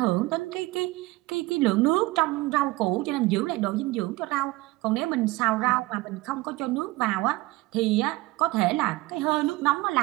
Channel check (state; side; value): quieter; left; 20.4 dB